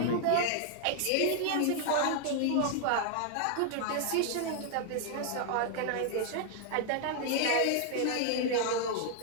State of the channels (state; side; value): different; both; correlation 0.00